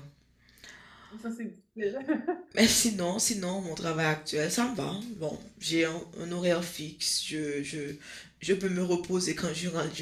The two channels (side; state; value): both; identical; correlation 1.00